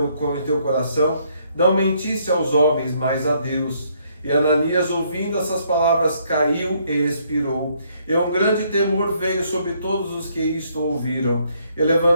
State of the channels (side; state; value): both; inverted; correlation -0.69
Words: coração? Não mentisse aos homens, mas a Deus. E Ananias, ouvindo essas palavras, caiu e expirou. E um grande temor veio sobre todos os que isto ouviram. E